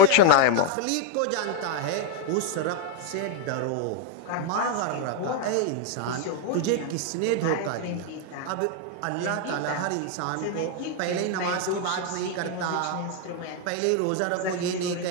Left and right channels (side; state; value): both; different; correlation 0.01